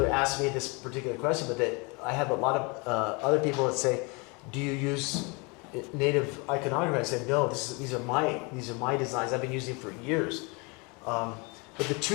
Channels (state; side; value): quieter; right; 29.7 dB